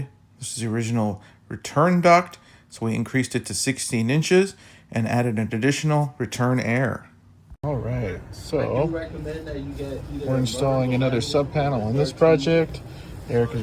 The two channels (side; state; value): both; identical; correlation 1.00